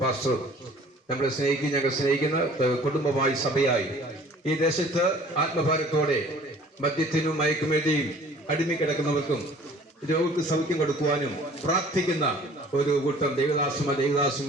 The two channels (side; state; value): both; normal; correlation 0.51